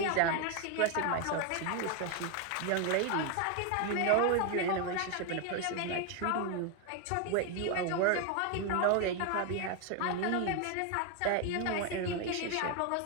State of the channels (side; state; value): both; different; correlation 0.01